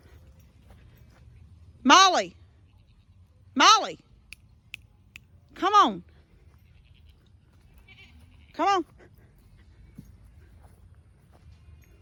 Molly! Molly! Come on! Come on!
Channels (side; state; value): both; identical; correlation 1.00